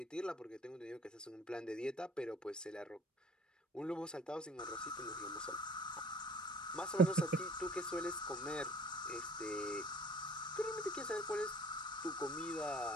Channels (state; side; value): normal; both; correlation 0.51